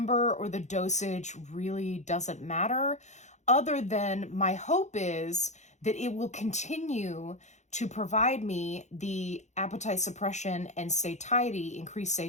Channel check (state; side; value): late; right; 0.34 ms